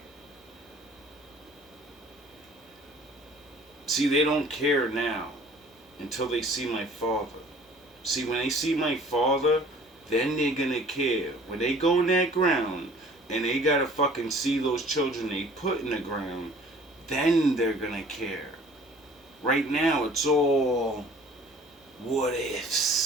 See, they don't care now until they see my father. See, when they see my father, then they're gonna care. When they go in that ground and they gotta fucking see those children they put in the ground, then they're gonna care. Right now, it's all what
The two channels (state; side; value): normal; both; correlation 0.51